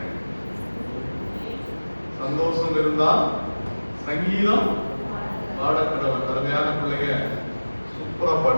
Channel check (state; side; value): inverted; both; correlation -1.00